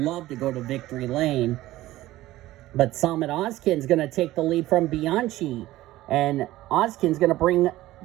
to go to victory lane. But Summit Oskin's going to take the lead from Bianchi. And Oskin's going to bring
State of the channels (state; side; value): quieter; left; 16.2 dB